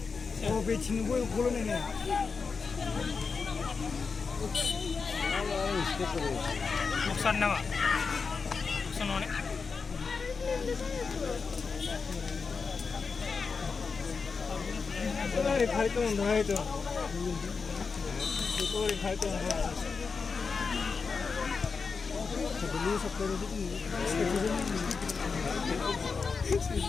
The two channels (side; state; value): right; quieter; 5.0 dB